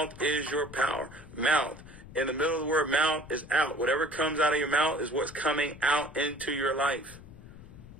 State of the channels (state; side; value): noise; left; rumble, 17 dB below the sound